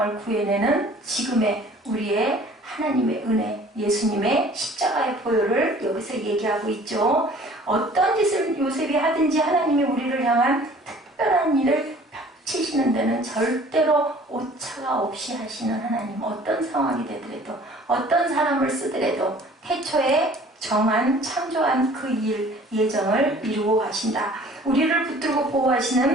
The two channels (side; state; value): both; normal; correlation 0.51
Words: 구해내는 지금의 우리의 하나님의 은혜, 예수님의 십자가의 보혈을 여기서 얘기하고 있죠. 어떤 짓을 요셉이 하든지 하나님이 우리를 향한 특별한 일을 펼치시는 데는 절대로 오차가 없이 하시는 하나님. 어떤 상황이 되더라도 어떤 사람을 쓰더라도 태초에 정한 창조한 그 일 예정을 이루고 가신다. 우리를 붙들고